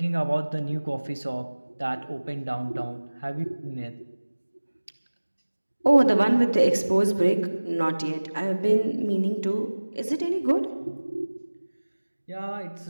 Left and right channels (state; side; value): inverted; both; correlation -1.00